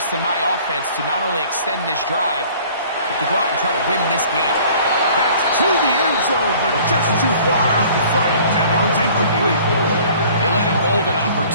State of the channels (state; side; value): inverted; both; correlation -0.51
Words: in my offense to not only extend this drive, but to go out and try to win this game. That's to the end zone, but just too far out in front. That one's incomplete. They let a golden